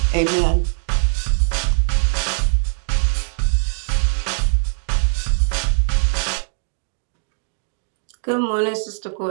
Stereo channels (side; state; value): left; silent; digital silence